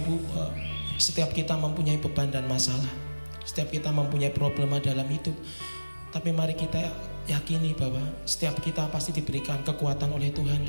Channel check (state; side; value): inverted; both; correlation -1.00